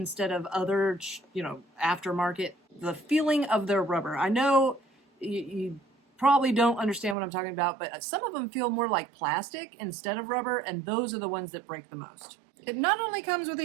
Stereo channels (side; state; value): left; drops out; at 7.2 s